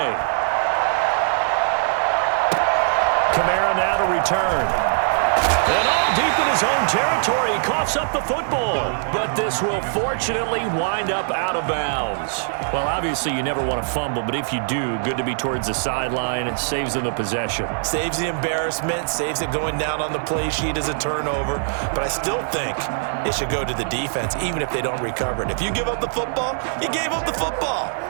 Kamara now to return. And all deep in his own territory, he coughs up the football. But this will fortunately wind up out of bounds. Well, obviously you never want to fumble, but if you do, good to be towards the sideline. It saves them the possession. Saves the embarrassment, saves it going down on the play sheet as a turnover. But I still think it should go to the defense, even if they don't recover it. If you give up the football, you gave up the football.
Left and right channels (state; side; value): silent; left; digital silence